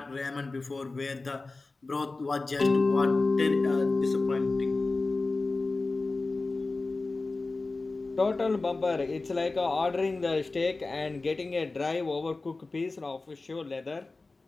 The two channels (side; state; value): right; quieter; 3.5 dB